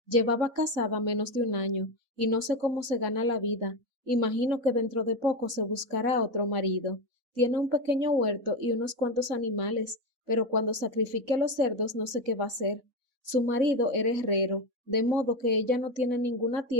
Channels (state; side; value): late; left; 3.6 ms